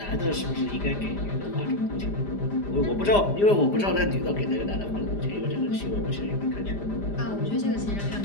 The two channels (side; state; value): right; late; 5.0 ms